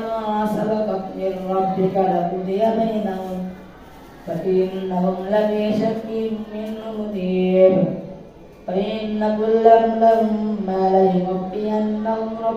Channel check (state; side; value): identical; both; correlation 1.00